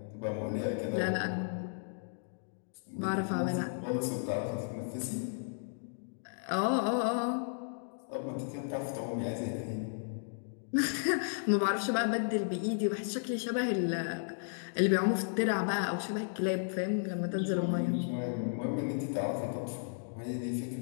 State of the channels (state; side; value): silent; right; digital silence